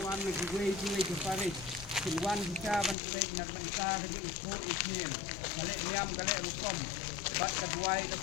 Silwan kita bantai nak bangsa ke isu isnin kale niam kale rukom bat kedua ke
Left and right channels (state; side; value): drops out; right; at 3.0 s